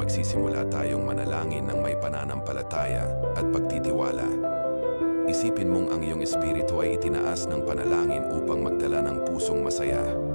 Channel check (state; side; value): inverted; both; correlation -1.00